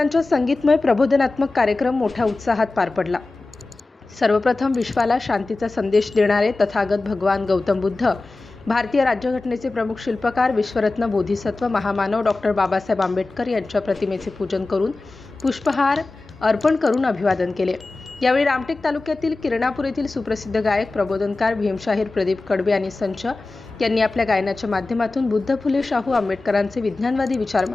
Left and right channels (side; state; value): right; quieter; 3.3 dB